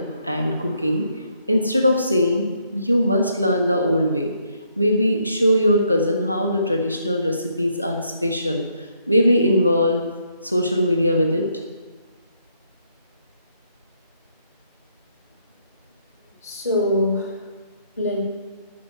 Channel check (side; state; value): both; inverted; correlation -0.72